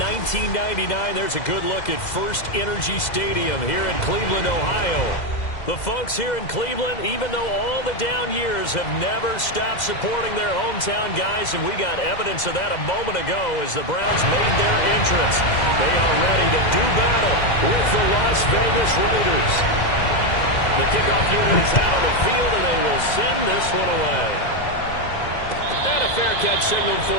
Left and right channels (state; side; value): late; right; 2.0 ms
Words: 1999. There's a good look at First Energy Stadium here in Cleveland, Ohio. The folks here in Cleveland, even though all the down years, have never stopped supporting their hometown guys, and we got evidence of that a moment ago as the Browns made their entrance. They are ready to do battle with the Las Vegas Raiders. The kickoff unit is out on the field, and they will send this one away. And a fair catch signaled for